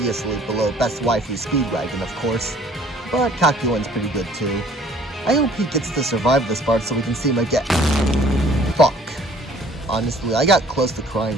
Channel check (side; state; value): both; normal; correlation 0.55